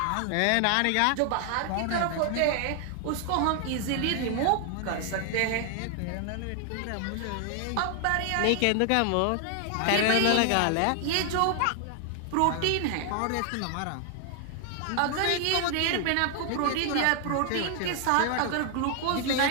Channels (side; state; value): both; different; correlation 0.00